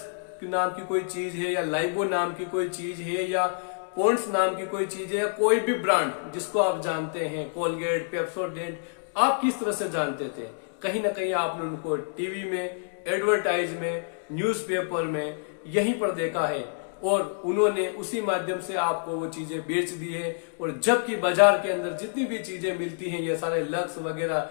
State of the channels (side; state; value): right; silent; digital silence